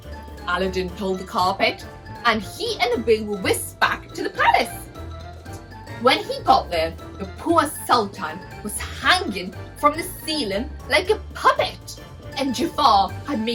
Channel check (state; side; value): identical; both; correlation 1.00